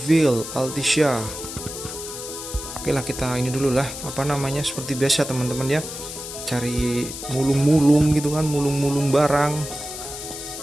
Altissia. Oke lah, kita ini dulu lah, apa namanya, seperti biasa teman-teman ya, cari mulung-mulung gitu kan, mulung-mulung barang.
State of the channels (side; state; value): left; noise; hiss, 9 dB below the sound